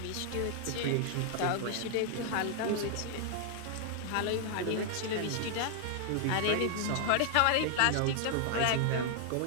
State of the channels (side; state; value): both; different; correlation 0.00